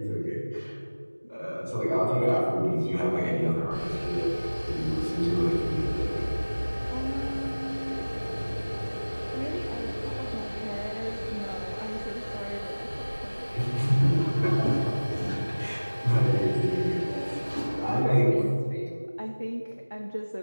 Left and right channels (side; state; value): both; inverted; correlation -1.00